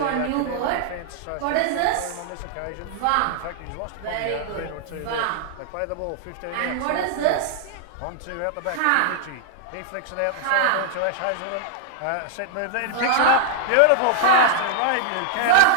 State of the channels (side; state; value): both; different; correlation -0.01